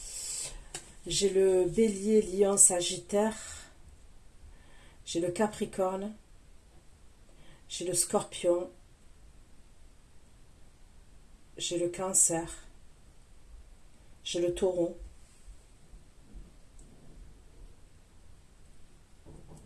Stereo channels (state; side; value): identical; both; correlation 1.00